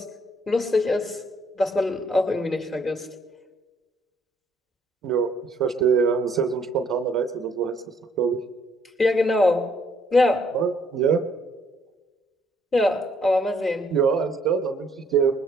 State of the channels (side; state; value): both; normal; correlation 0.67